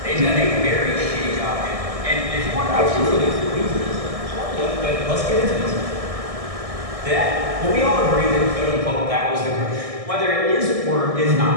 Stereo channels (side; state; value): left; late; 1.6 ms